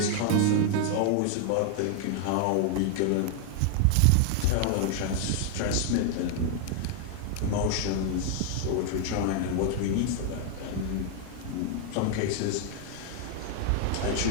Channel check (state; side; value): different; both; correlation 0.00